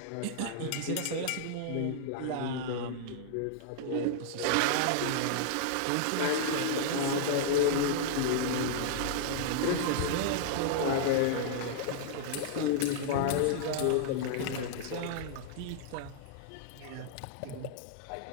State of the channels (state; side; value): different; both; correlation -0.01